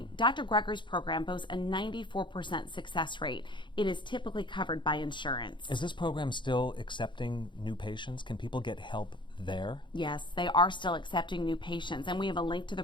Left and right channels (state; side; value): late; right; 0.23 ms